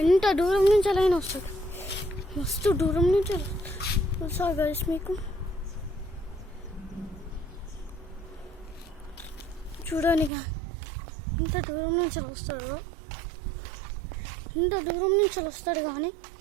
ఎంత దూరం నుంచి అలాగే వస్తుంది. మస్తు దూరం నుంచి వస్తుంది గైస్. మీకు చూడండి ఎంత దూరం నుంచి వస్తాడు కానీ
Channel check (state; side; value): drops out; left; at 10.3 s